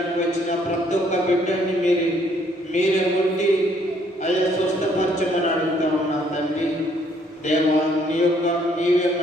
వచ్చిన ప్రతి ఒక్క బిడ్డని మీరే ఉండి అయ్యా స్వస్థపరచమని అడుగుతా ఉన్నాం తండ్రి. దేవా, నీవే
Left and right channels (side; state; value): both; normal; correlation 0.66